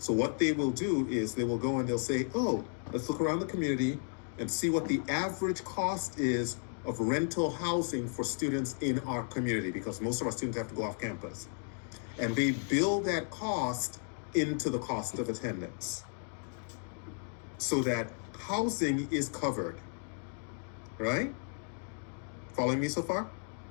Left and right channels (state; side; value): silent; right; 55 dB below the other